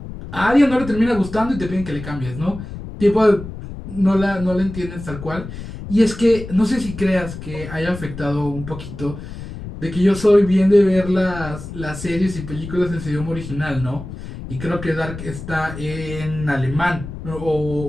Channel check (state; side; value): noise; left; rumble, 11 dB below the sound